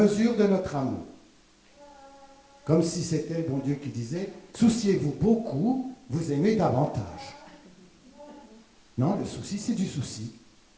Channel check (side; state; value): both; identical; correlation 1.00